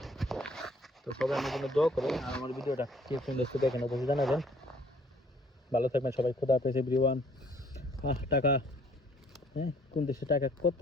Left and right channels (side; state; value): both; normal; correlation 0.60